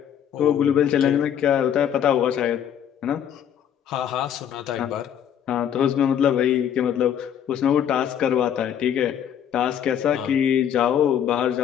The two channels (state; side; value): quieter; right; 9.3 dB